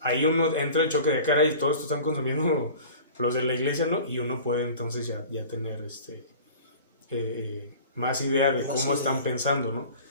ahí uno entra el choque de cara y todo esto están consumiendo los de la iglesia, ¿no? Y uno puede entonces ya tener más idea de cómo están pensando, ¿no?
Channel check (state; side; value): inverted; both; correlation -0.41